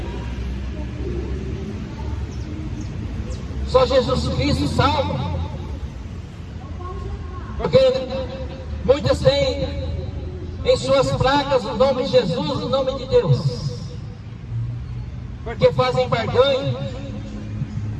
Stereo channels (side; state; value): both; identical; correlation 1.00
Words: Só Jesus Cristo salva. Porque muitas têm em suas placas o nome de Jesus, o nome de Deus, porque fazem barganha,